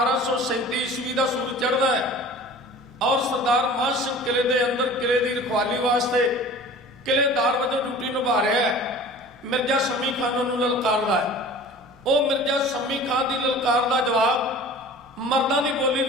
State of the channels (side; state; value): both; normal; correlation 0.42